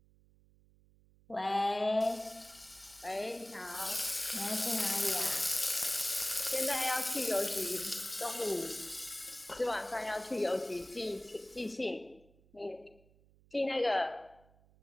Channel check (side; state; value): right; noise; hum, 29 dB below the sound